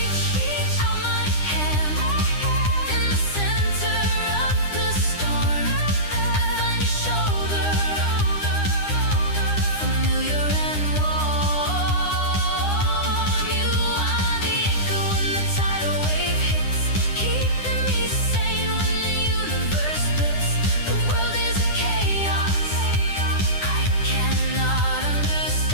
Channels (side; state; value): right; late; 9.9 ms